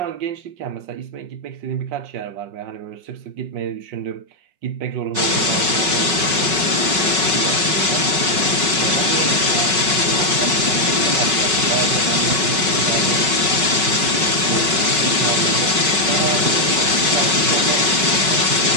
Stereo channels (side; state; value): left; late; 5.3 ms